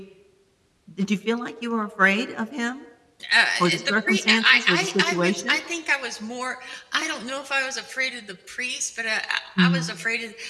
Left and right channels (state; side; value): identical; both; correlation 1.00